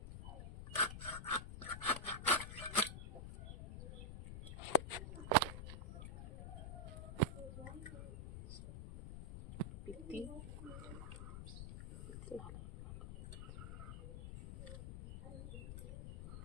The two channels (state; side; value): noise; left; rumble, 8 dB below the sound